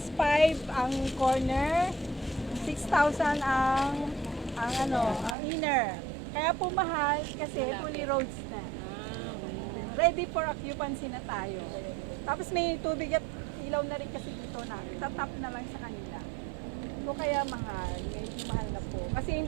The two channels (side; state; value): left; drops out; at 5.4 s